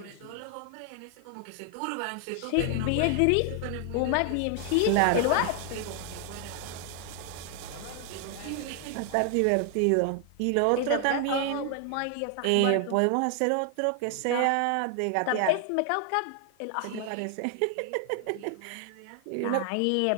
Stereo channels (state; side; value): different; both; correlation 0.00